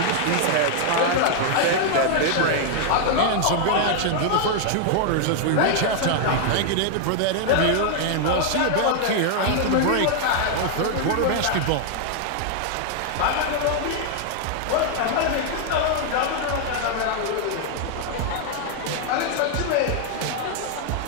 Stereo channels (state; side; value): different; both; correlation 0.00